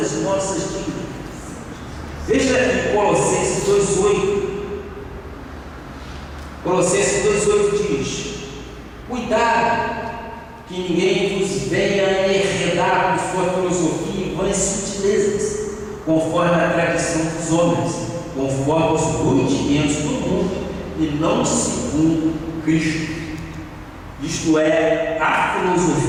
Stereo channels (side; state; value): both; identical; correlation 1.00